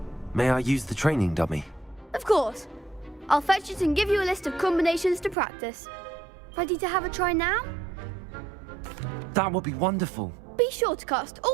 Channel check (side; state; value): left; drops out; at 5.4 s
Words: May I use the training dummy? Of course. I'll fetch it and give you a list of combinations to practice. Ready to have a try now? That would be wonderful. Be sure to cast